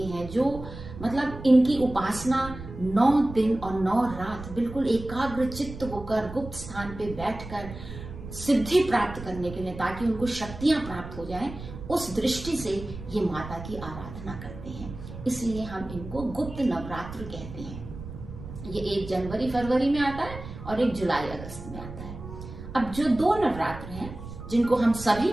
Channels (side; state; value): right; noise; rumble, 12 dB below the sound